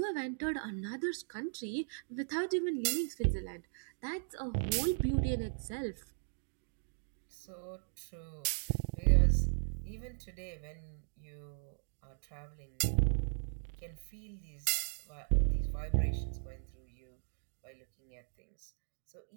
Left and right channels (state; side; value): silent; left; digital silence